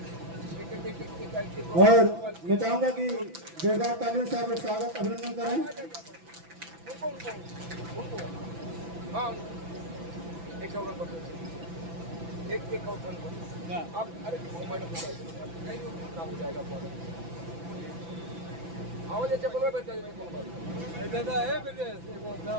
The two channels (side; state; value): left; late; 6.0 ms